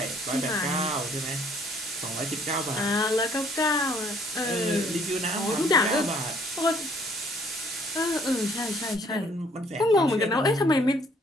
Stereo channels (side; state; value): both; normal; correlation 0.61